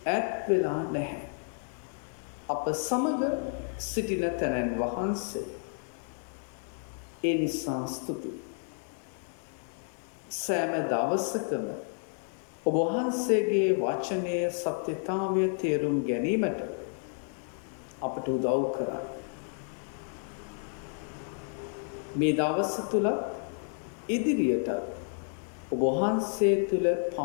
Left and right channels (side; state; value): right; silent; 57 dB below the other